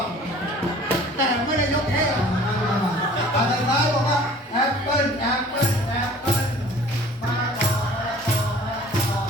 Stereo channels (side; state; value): both; normal; correlation 0.49